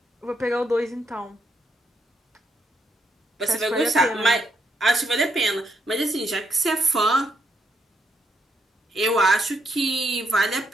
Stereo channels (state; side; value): normal; both; correlation 0.77